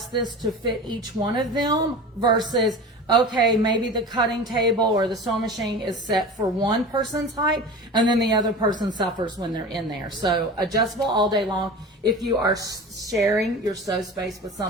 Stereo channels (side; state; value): both; normal; correlation 0.33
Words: this to fit each one of them versus, okay, maybe the cutting table or the sewing machine is set for one person's height and then the other person suffers when they're in there. So adjustable all day long if you are sharing your sew space with